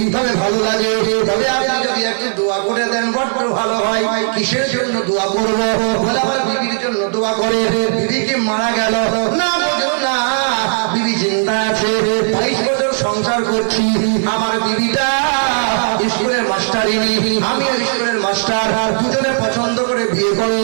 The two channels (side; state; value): left; silent; digital silence